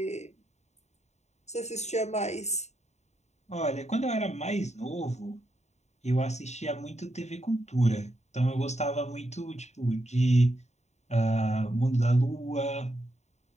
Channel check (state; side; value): late; right; 0.33 ms